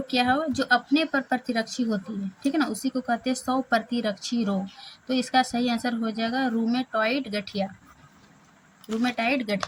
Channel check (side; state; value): both; identical; correlation 1.00